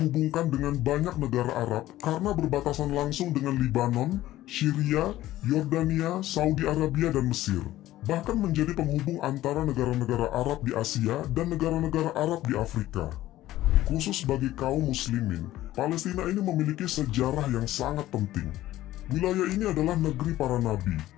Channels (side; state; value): right; quieter; 15.0 dB